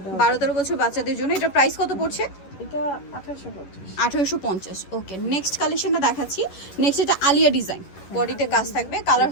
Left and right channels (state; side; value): late; right; 11 ms